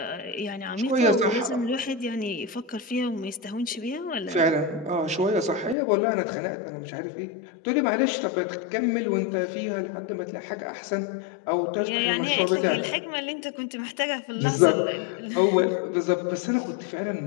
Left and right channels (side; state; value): right; drops out; at 5.8 s